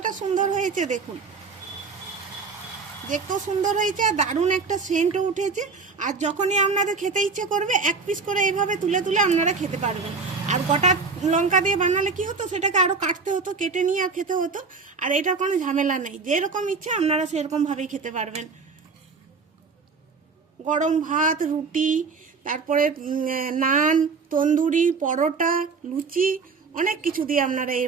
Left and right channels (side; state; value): left; quieter; 4.7 dB